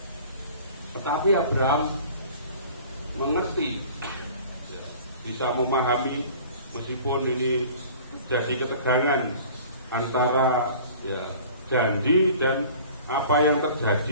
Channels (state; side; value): inverted; both; correlation -0.45